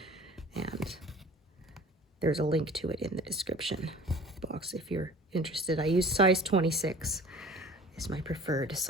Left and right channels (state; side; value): normal; both; correlation 0.45